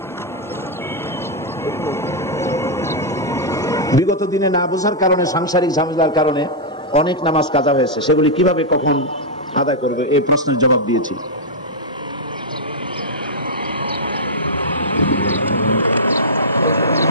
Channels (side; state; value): both; normal; correlation -0.07